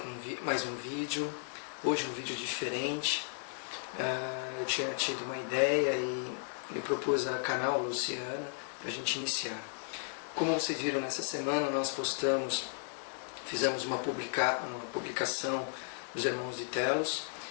mais um vídeo. Hoje um vídeo diferente. Eu tinha tido uma ideia e me propus a canal Luciana para a gente iniciar. Como vocês viram nessa semana, nós fizemos uma publicação dos Irmãos de Telos.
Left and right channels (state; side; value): silent; right; 55 dB below the other